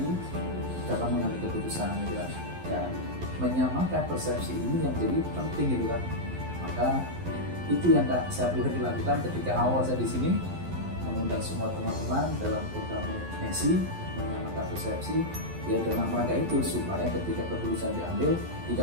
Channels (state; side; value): late; left; 11 ms